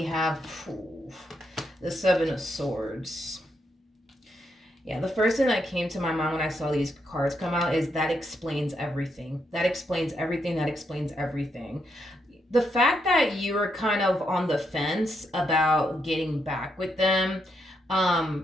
have the Seven of Swords. Yeah, the first thing that came to my mind when I saw these cards come out is that explains everything. That explains everything. That explains everything. The fact that you were kind of on the fence about getting back with them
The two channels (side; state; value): both; normal; correlation 0.79